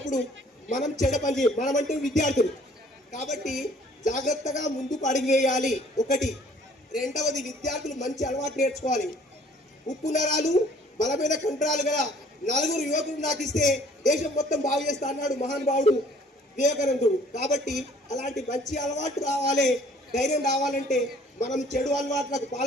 మనం చెడ పని చేయం. మనం అంటే విద్యార్థులు కాబట్టి జాగ్రత్తగా ముందుకు అడుగు వేయాలి. ఒకటి. రెండవది, విద్యార్థులు మంచి అలవాటు నేర్చుకోవాలి. ఉప్పు నరాలు బలమైన కండరాలు గల 4 యువకులు నాకు ఇస్తే దేశం మొత్తం బాగు చేస్తా అన్నాడు మహానుభావుడు వివేకానందుడు. కాబట్టి అలాంటి మంచి అలవాటు రావాలి, ధైర్యం రావాలంటే మనం చెడు అలవాట్లకు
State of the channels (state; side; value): normal; both; correlation 0.57